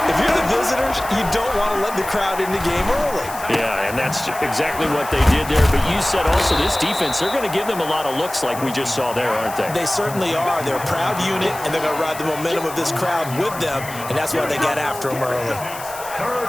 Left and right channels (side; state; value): left; noise; hiss, 13 dB below the sound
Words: If you're the visitors, you don't want to let the crowd in the game early. Yeah, and that's exactly what they did there. But you said also this defense, they're going to give them a lot of looks like we just saw there, aren't they? They certainly are. They're a proud unit, and they're going to ride the momentum of this crowd with them, and that's why they got after them early.